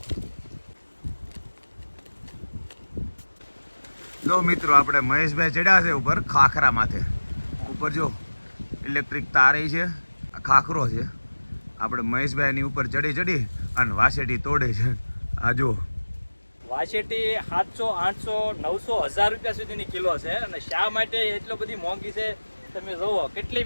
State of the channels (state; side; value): inverted; both; correlation -1.00